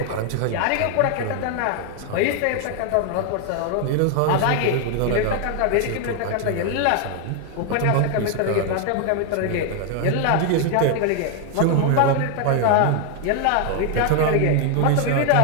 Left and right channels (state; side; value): different; both; correlation 0.00